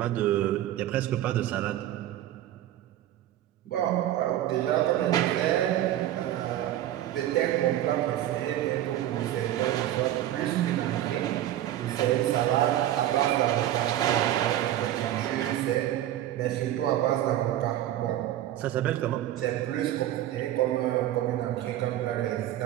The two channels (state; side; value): quieter; left; 12.9 dB